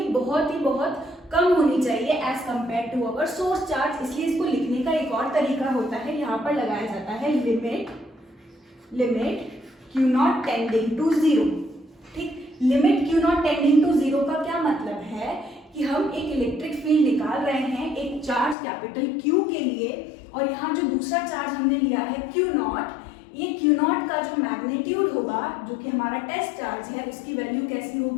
बहुत कम होनी चाहिए as compare to our source charge. इसलिए इसको लिखने का एक और तरीका होता है, यहाँ पर लगाया जाता है limit Q not tending to zero. ठीक, limit Q not tending to zero का क्या मतलब है कि हम एक इलेक्ट्रिक फील्ड निकाल रहे हैं एक चार्ज कैपिटल क्यू के लिए, और यहाँ जो दूसरा चार्ज हमने लिया है क्यू नॉट, ये क्यू नॉट का जो मैग्नीट्यूड होगा, जो कि हमारा टेस्ट चार्ज है, उसकी वैल्यू कैसी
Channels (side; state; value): right; drops out; at 18.6 s